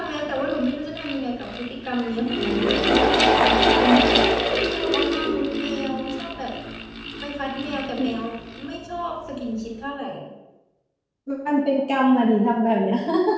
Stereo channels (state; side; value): identical; both; correlation 1.00